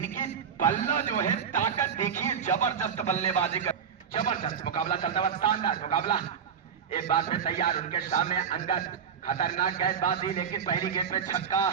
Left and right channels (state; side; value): quieter; left; 7.3 dB